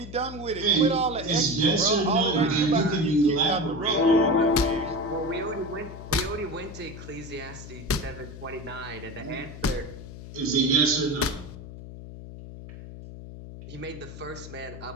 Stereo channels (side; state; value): left; noise; hum, 13 dB below the sound